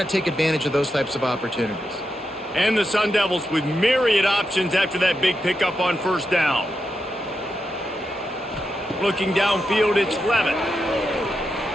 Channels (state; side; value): normal; both; correlation 0.86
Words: take advantage of those types of opportunities. And the Sun Devils with myriad options after that big pickup on first down. Looking downfield, it's Levitt.